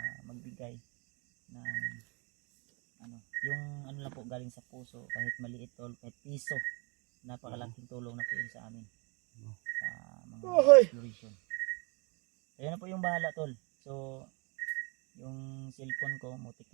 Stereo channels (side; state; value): left; quieter; 31.1 dB